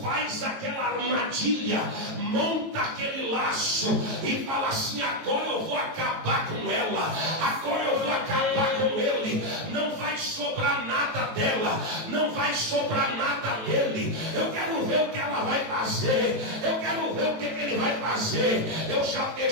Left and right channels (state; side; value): late; left; 18 ms